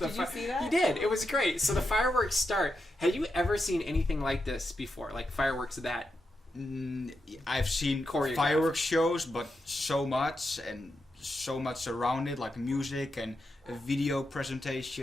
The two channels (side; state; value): both; normal; correlation 0.86